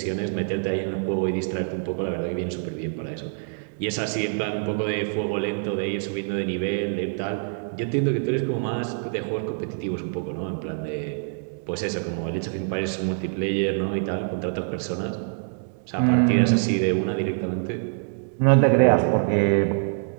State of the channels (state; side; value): silent; left; digital silence